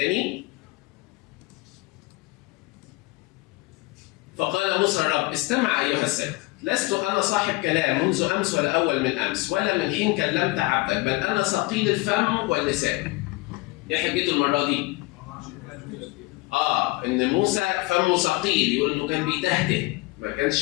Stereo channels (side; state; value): right; quieter; 22.3 dB